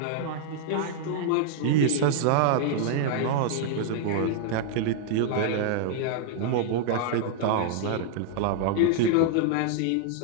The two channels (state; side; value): different; both; correlation -0.01